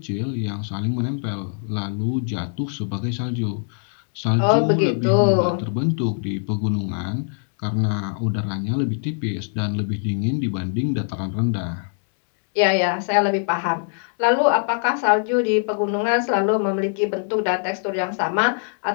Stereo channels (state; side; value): silent; right; digital silence